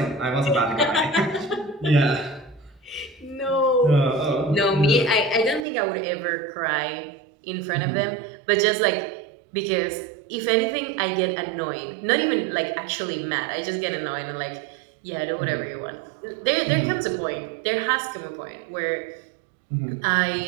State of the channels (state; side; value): drops out; left; at 5.7 s